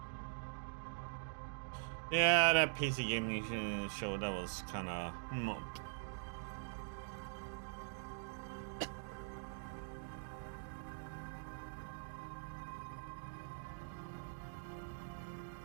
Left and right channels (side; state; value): left; silent; digital silence